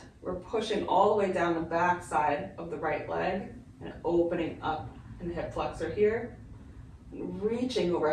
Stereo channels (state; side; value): identical; both; correlation 1.00